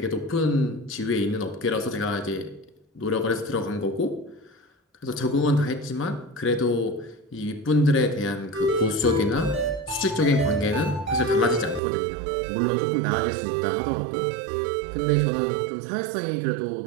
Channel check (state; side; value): drops out; left; at 11.8 s